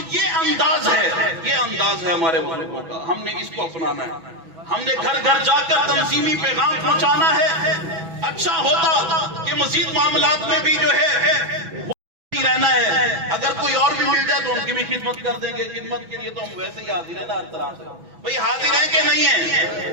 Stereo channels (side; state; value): left; late; 6.1 ms